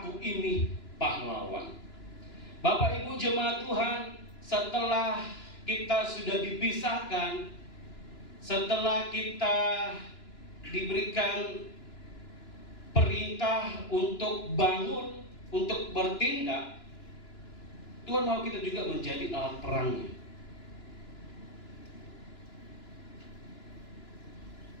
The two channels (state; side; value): late; right; 2.9 ms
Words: ini pahlawan. Bapak Ibu Jemaat Tuhan, setelah kita sudah dipisahkan, setelah kita diberikan perintah untuk bangun, untuk bertindak, Tuhan mau kita juga menjadi alat perangnya.